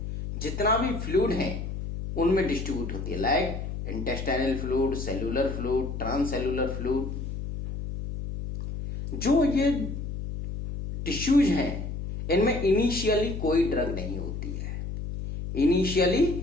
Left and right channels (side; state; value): left; noise; hum, 6 dB below the sound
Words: जितना भी फ्लूइड है उनमें डिस्ट्रीब्यूट होती है, like intestinal fluid, cellular fluid, transcellular fluid. जो ये टिश्यूज हैं इनमें इनिशियली कोई ड्रग नहीं होती है। इनिशियली